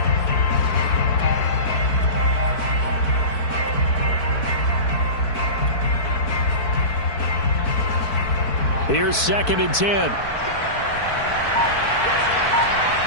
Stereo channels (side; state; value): right; late; 4.6 ms